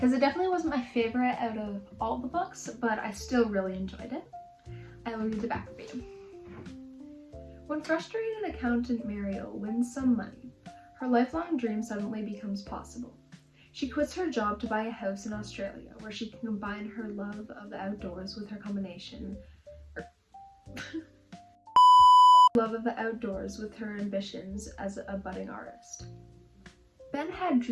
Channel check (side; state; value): both; identical; correlation 1.00